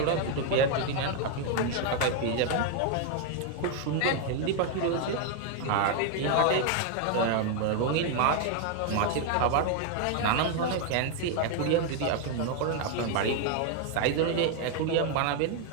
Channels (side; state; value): both; different; correlation 0.01